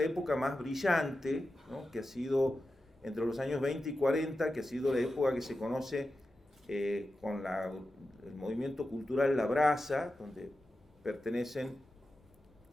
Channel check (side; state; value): both; normal; correlation 0.91